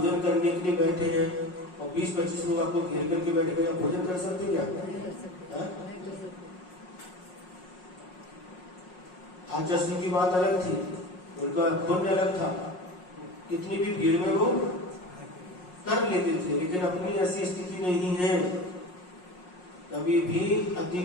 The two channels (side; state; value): right; late; 5.5 ms